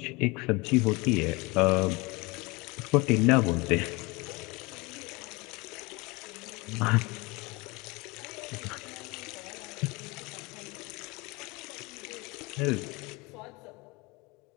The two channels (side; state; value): right; quieter; 25.3 dB